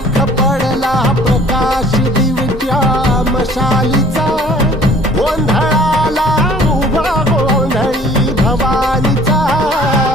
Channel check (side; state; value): both; normal; correlation 0.54